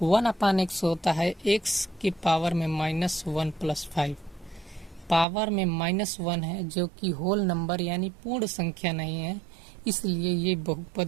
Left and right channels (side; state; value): left; drops out; at 5.2 s